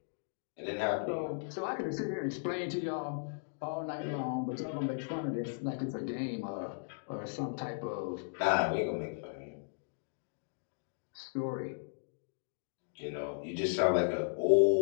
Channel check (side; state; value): right; silent; digital silence